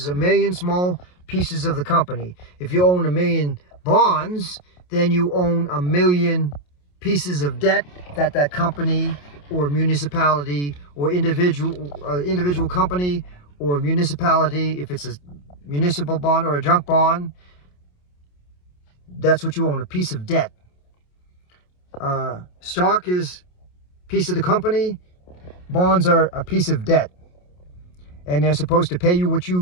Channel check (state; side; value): late; right; 28 ms